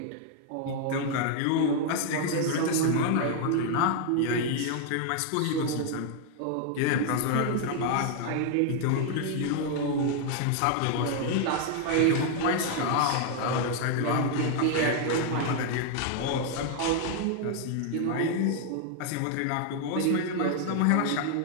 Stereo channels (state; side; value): different; both; correlation 0.00